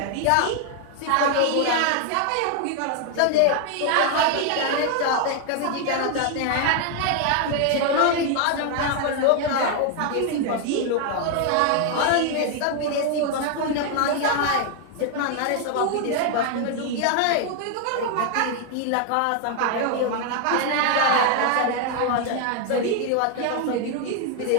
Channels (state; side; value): different; both; correlation 0.00